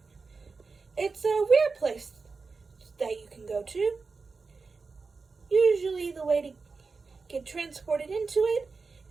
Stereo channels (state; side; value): quieter; left; 4.4 dB